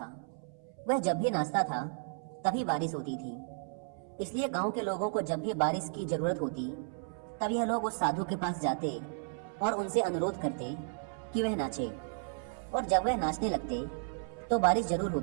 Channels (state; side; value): silent; left; 55 dB below the other